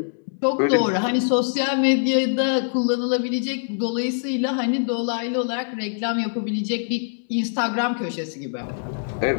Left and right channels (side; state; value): right; silent; digital silence